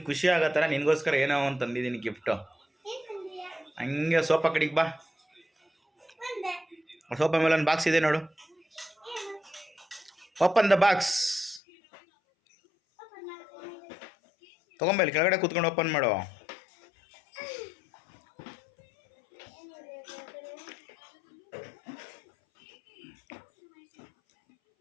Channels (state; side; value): drops out; right; at 11.6 s